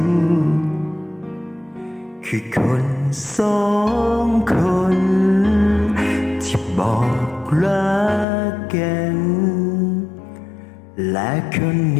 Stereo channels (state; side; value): drops out; right; at 8.2 s